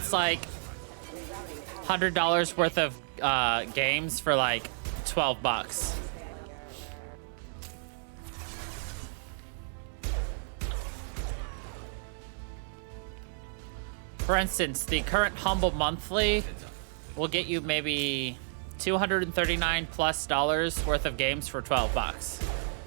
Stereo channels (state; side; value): silent; left; 57 dB below the other